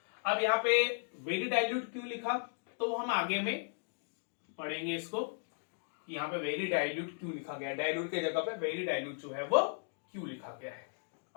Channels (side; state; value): right; silent; digital silence